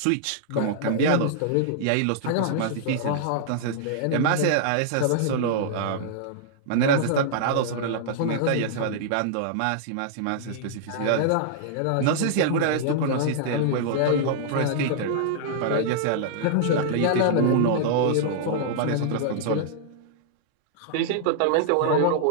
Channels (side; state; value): both; different; correlation -0.01